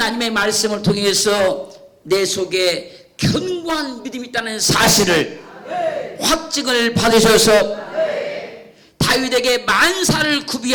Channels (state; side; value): identical; both; correlation 1.00